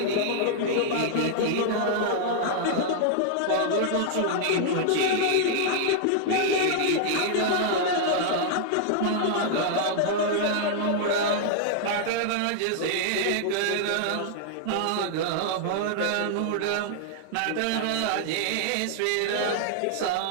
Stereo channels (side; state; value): both; different; correlation -0.01